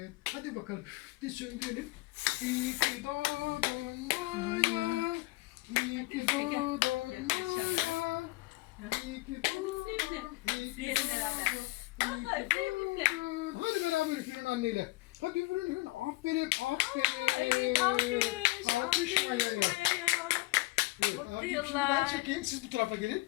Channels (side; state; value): right; quieter; 21.8 dB